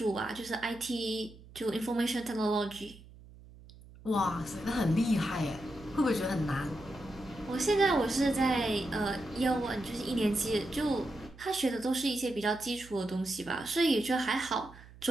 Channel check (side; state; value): right; noise; hum, 20 dB below the sound